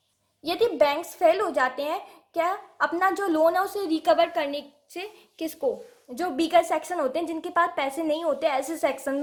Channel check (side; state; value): both; identical; correlation 1.00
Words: यदि बैंक्स फेल हो जाते हैं क्या अपना जो लोन है उसे रिकवर करने से, किसको, जो बीकर सेक्शन होते हैं जिनके पास पैसे नहीं होते, ऐसे